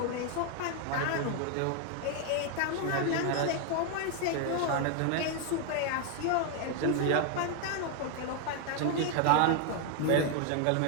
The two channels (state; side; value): different; both; correlation 0.01